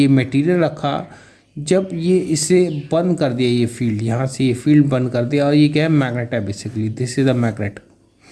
मटेरियल रखा, जब ये इसे बंद कर दिया, ये फील्ड यहाँ से ये फील्ड बंद कर दिया, और ये क्या है, मैग्नेट है basically, this is the magnet.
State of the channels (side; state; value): both; identical; correlation 1.00